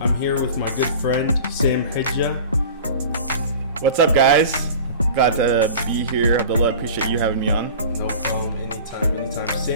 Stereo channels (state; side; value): inverted; both; correlation -0.38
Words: here with my good friend Sam Hijja. What's up, guys? Glad to be here. Abdullah, appreciate you having me on. No problem, anytime.